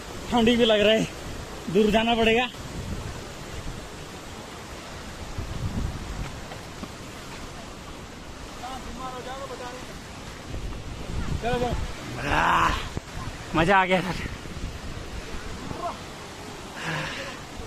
ठंडी भी लग रहा है, दूर जाना पड़ेगा। मजा आ गया सर।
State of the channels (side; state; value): both; identical; correlation 1.00